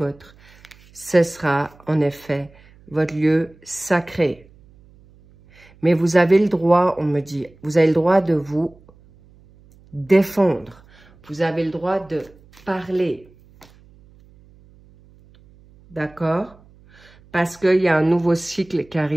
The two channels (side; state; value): right; noise; hum, 27 dB below the sound